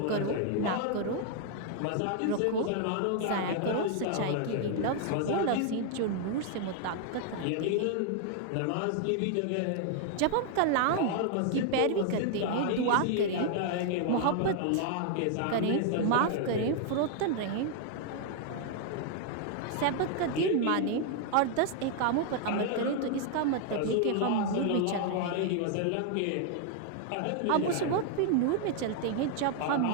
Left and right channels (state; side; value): different; both; correlation 0.00